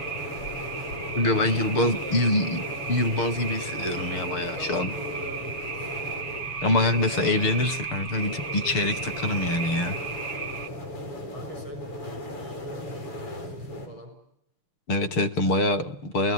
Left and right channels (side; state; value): right; late; 6.6 ms